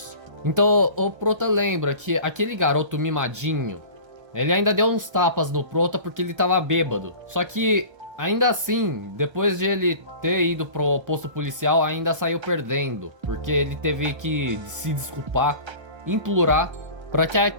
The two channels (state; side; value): late; left; 1.3 ms